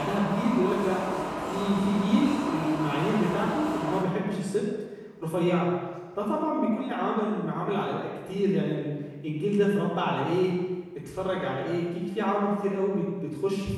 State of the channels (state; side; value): identical; both; correlation 1.00